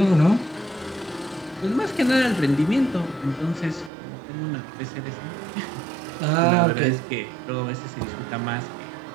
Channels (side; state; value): left; drops out; at 3.9 s